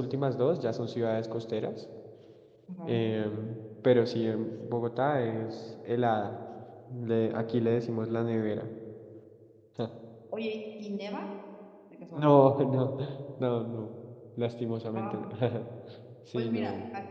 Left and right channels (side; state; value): both; identical; correlation 1.00